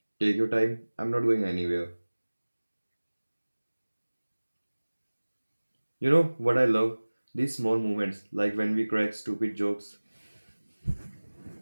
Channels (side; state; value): both; inverted; correlation -1.00